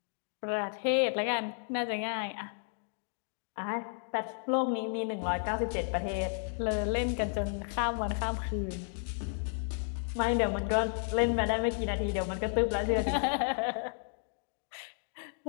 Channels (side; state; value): right; silent; digital silence